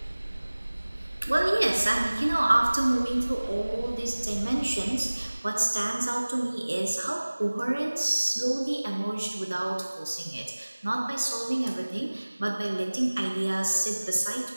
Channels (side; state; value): both; inverted; correlation -1.00